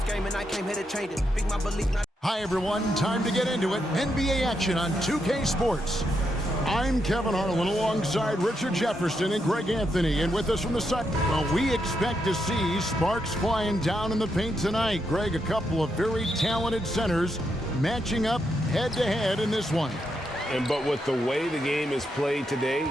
game and I came here to change it. Speak my belief, not. Hi, everyone. Time to get into it. NBA action on 2K Sports. I'm Kevin Harlan alongside Richard Jefferson and Greg Anthony. And with us from the side, well, we expect to see sparks flying down in the paint tonight. Greg, a couple of very talented centers matching up head-to-head in this one. But with the way the game is played today,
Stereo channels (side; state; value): both; normal; correlation 0.81